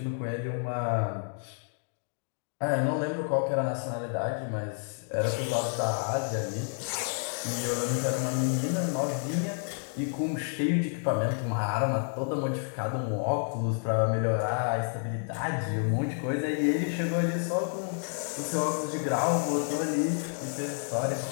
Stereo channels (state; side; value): silent; right; 57 dB below the other